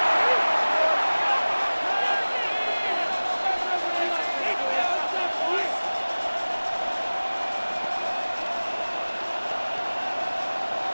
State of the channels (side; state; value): both; inverted; correlation -1.00